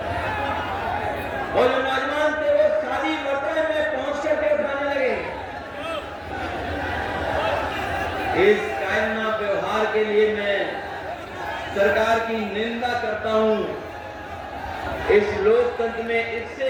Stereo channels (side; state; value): both; identical; correlation 1.00